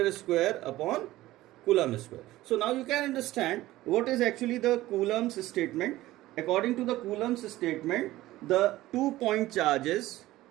square upon Coulomb square. So now you can understand what is actually the Coulomb's statement. According to the Coulomb's statement, the 2 point charges,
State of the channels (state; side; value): quieter; left; 16.5 dB